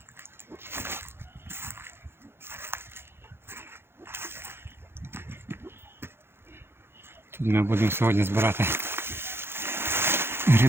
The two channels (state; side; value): late; left; 0.11 ms